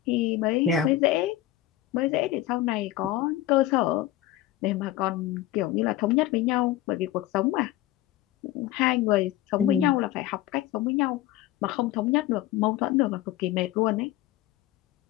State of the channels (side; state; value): right; quieter; 13.9 dB